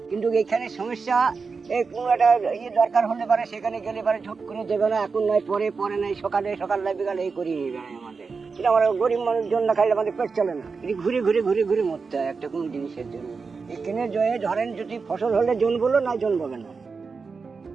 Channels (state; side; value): quieter; left; 4.8 dB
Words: কিন্তু এখানে সমস্যা এই কোনো একটা ইয়ে দরকার হলে পারে সেখানে গেলে পারে ঝট করে দেবে না, এখন নয় পরে, পরে নাই সকাল নাই বিকালে এই করিয়ে নিয়ে বেড়ায় আমাদের। কিন্তু আমরা গরিব মানুষজন না খাইলে আমাদের পেট চলে না, এটি ঘুরে ঘুরে ঘুরে ঘুরে মরতে হয় একটা কোনো জিনিসের জন্য। এখানে জয়ে ধরেন যদি ফসল হলে জন্মলো না জন্মবে না,